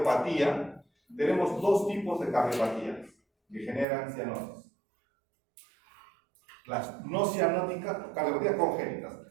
tenemos 2 tipos de cardiopatía que generan cianosis. Las no cianóticas, cardiopatías congénitas,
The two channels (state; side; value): drops out; left; at 3.9 s